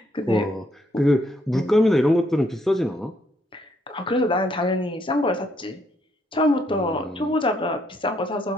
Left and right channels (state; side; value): normal; both; correlation 0.72